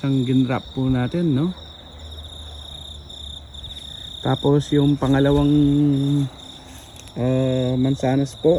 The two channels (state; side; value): identical; both; correlation 1.00